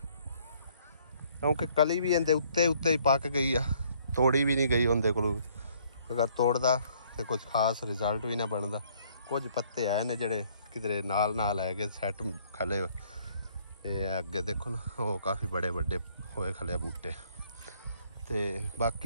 क्योंकि कली भी इहदे उत्ते ही पक गई आ, तोड़ी भी नहीं गई उनके कोलों। अगर तोड़दा तो कुछ खास रिजल्ट भी ना बनता। कुछ पत्ते आए ने जिहड़े किधरे नाल है कि सैट खले, अगे देखो ना वो काफ़ी बड़े बड़े होए खले बूटे, ते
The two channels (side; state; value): both; inverted; correlation -0.63